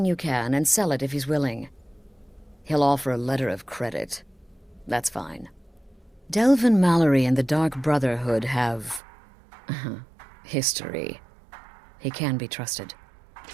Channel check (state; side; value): drops out; left; at 9.0 s